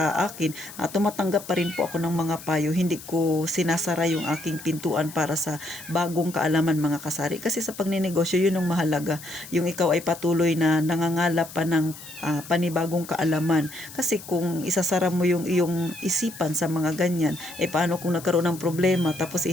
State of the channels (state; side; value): noise; left; hiss, 16 dB below the sound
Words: akin. Tumatanggap pa rin po ako ng mga payo. Hindi ko sinasara yung aking pintuan para sa bagong kaalaman mga kasari. Kasi sa pagninegosyo, yun ang mahalaga. Yung ikaw ay patuloy na nangangalap pa ng panibagong kaalaman. Kasi kung isasara mo yung iyong isipan sa mga ganyan, paano kung nagkaroon ng problema tapos